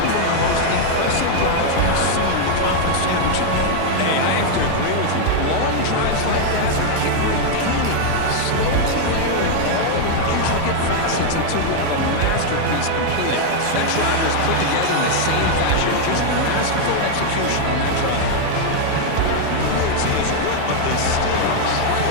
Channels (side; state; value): both; different; correlation 0.00